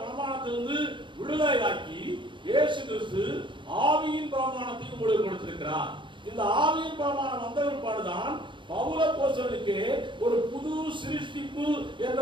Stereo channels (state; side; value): late; left; 0.23 ms